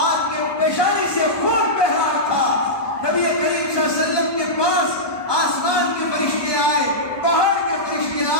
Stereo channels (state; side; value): late; right; 1.2 ms